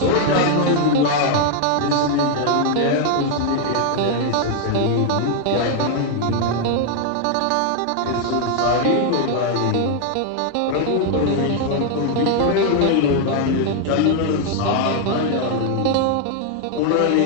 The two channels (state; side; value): different; both; correlation 0.00